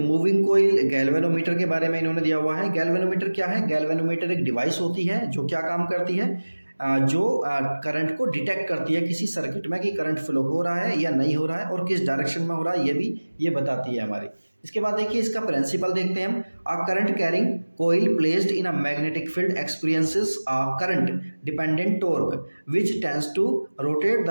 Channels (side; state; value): both; inverted; correlation -1.00